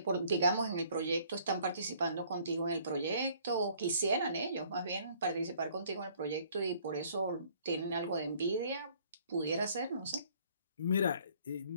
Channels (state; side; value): inverted; both; correlation -0.59